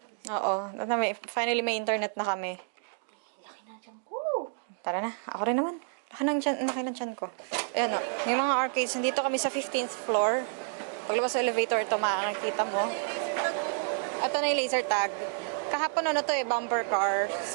Oo. Finally, may internet na kami. Laki na dyan ko. Tara na. Ako rin naman. Laki ng tiyan ko. Ayan o. Yung mga arcades, nandito kami sa 15th floor. Paglabas sa elevator, ito makakita mo. Ito na yung laser tag. Kahapon to bumper car.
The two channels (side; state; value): left; silent; 58 dB below the other